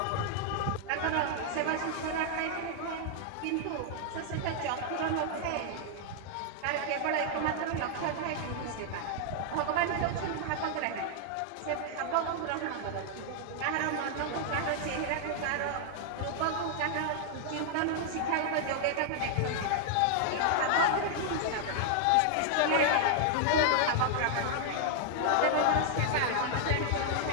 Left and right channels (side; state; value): both; different; correlation -0.01